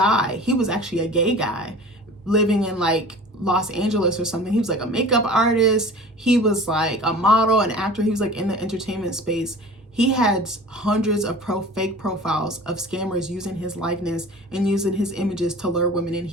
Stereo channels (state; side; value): normal; both; correlation 0.41